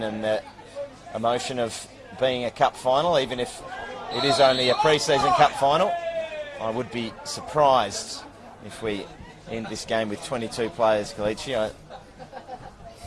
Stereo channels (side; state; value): both; identical; correlation 1.00